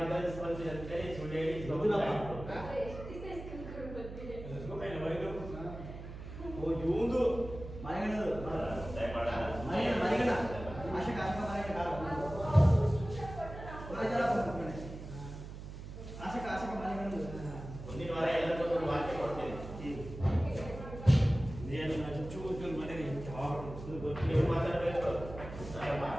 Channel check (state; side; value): noise; right; hum, 11 dB below the sound